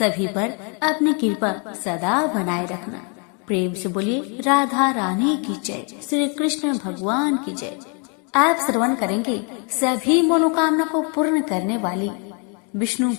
पर अपनी कृपा सदा बनाए रखना। प्रेम से बोलिए राधा रानी की जय, श्री कृष्ण भगवान की जय। आप श्रवण करेंगे सभी मनोकामना को पूर्ण करने वाली विष्णु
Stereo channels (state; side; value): quieter; right; 36.4 dB